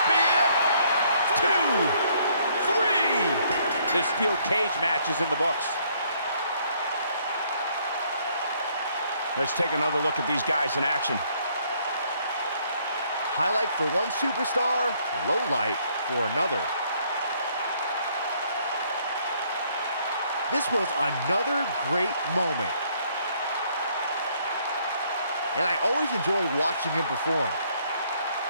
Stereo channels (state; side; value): inverted; both; correlation -0.66